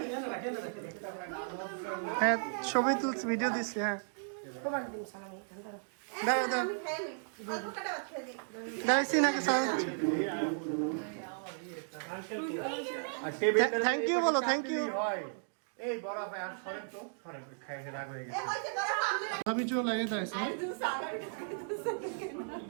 হ্যাঁ ছবি তুলছি ভিডিও দিচ্ছি হ্যাঁ তোমার দিন সালামি ধরো দাও দাও দাও সিনহাকে সালাম থ্যাংক ইউ বলো থ্যাংক ইউ এই বড় ভাই আর সরেন তো সরেন খাইতে রাগ হয়ে গেছে আমি চলে লাগে তাইছে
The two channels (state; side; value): silent; left; digital silence